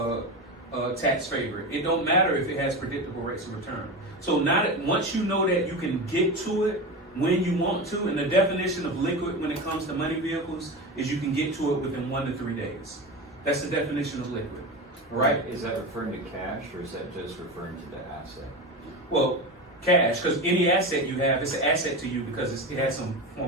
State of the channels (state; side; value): normal; both; correlation 0.24